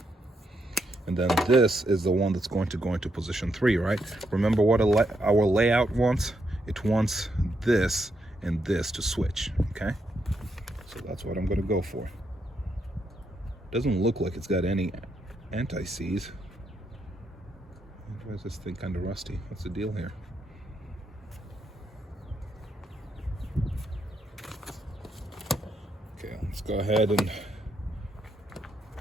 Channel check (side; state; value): both; normal; correlation 0.79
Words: And then this is the one that's going to go into position 3, right? Remember what our layout wants? It wants this and this to switch, okay? So that's what I'm going to go for. Doesn't look like it's got any anti-seize. Why is this thing kind of rusty? What's the deal here? Okay, let's go ahead and